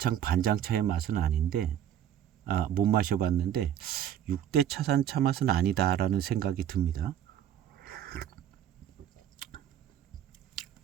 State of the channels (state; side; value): quieter; left; 10.4 dB